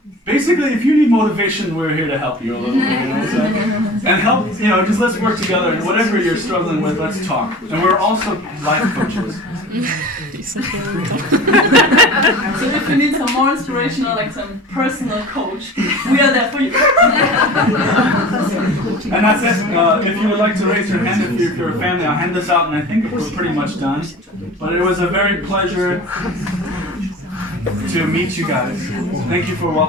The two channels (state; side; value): normal; both; correlation 0.38